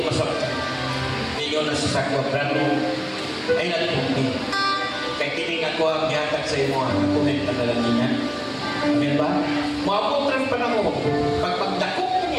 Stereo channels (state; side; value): identical; both; correlation 1.00